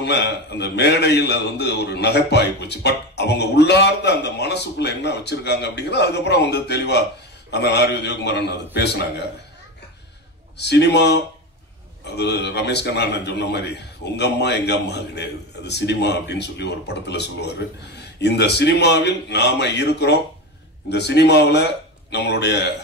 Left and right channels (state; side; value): normal; both; correlation 0.21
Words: அந்த மேடையில் அது வந்து ஒரு நகைப்பாகி போச்சு. பட் அவங்க உள்ளார்ந்த அந்த மனசுக்குள்ள என்ன வச்சிருக்காங்க அப்படிங்கிறது அதுக்கப்புறம் வந்து தெளிவா அந்த ஆர்.வி. உதயகுமாரன் அது பேசினாங்க. சினிமா அது ரமேஷ் கண்ணா சொன்ன மாதிரி உங்க அம்மா எங்க அம்மா கிடையாது, அது சினிமா அப்படின்னு சொல்லி ஒரு படத்துல சொல்லுவாரு. இந்த சினிமாவில் நாம இருக்கிறோம். இந்த சினிமாவில் நம்மளுடைய